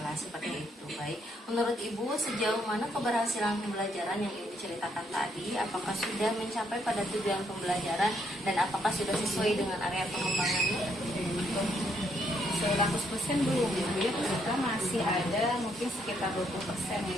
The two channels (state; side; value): normal; both; correlation 0.73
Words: seperti itu. Baik, menurut Ibu sejauh mana keberhasilan pembelajaran yang Ibu ceritakan tadi? Apakah sudah mencapai pada tujuan pembelajaran dan apakah sudah sesuai dengan area pengembangannya? 100% belum ya, kita masih ada mungkin sekitar